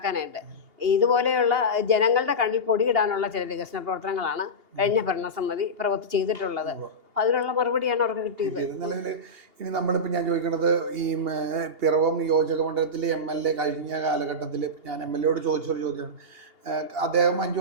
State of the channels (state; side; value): late; left; 2.8 ms